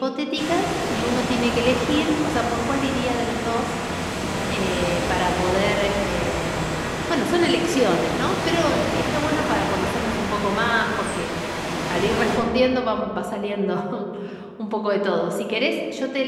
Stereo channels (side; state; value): both; identical; correlation 1.00